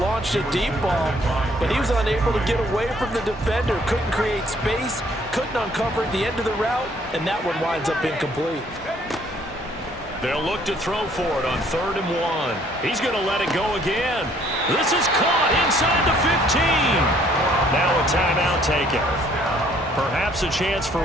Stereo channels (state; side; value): normal; both; correlation 0.62